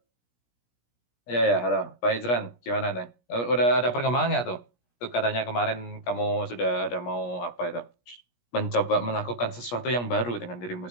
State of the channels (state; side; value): late; right; 17 ms